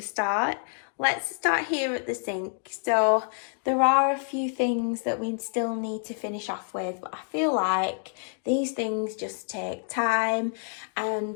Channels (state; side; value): silent; right; 60 dB below the other